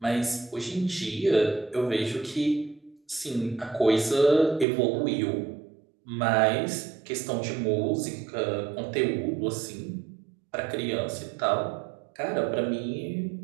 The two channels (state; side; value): drops out; left; at 4.7 s